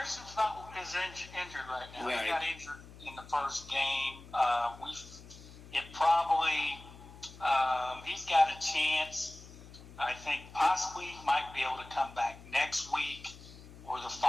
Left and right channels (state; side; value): noise; left; hum, 18 dB below the sound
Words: injured right now. Right. He got injured in the first game. He's got a chance. I think possibly he might be able to come back next week or the